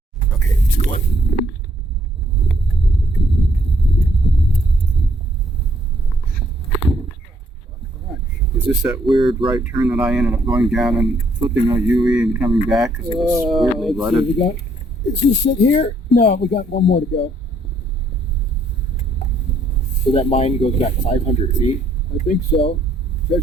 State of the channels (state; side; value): normal; both; correlation 0.68